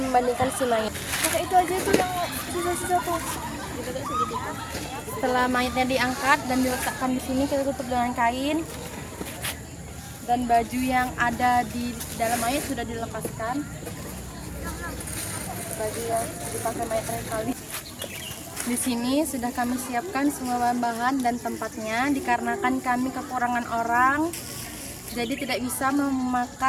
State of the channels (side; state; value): both; identical; correlation 1.00